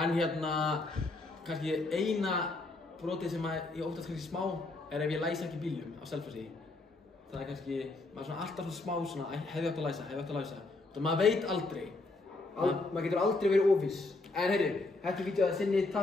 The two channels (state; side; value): quieter; right; 3.2 dB